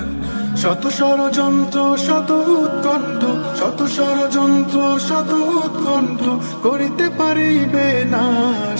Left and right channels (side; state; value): both; inverted; correlation -1.00